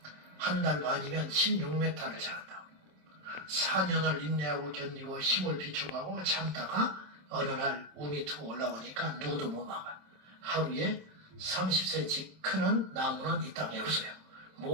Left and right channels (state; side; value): late; left; 27 ms